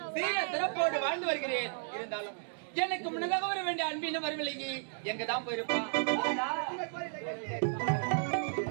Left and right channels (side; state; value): left; silent; digital silence